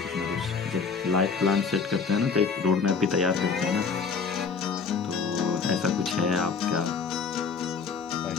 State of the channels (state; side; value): quieter; right; 5.4 dB